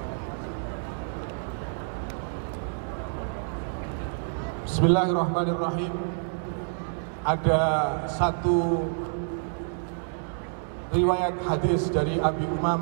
Bismillahirrahmanirrahim. Ada satu riwayat hadis dari Abi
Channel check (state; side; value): silent; left; digital silence